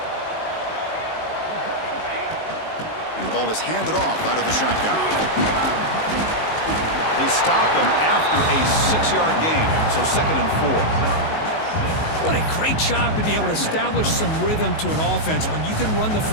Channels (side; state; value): right; late; 19 ms